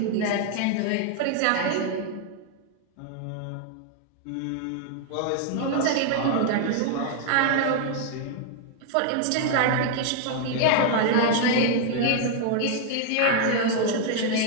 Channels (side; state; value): both; different; correlation 0.00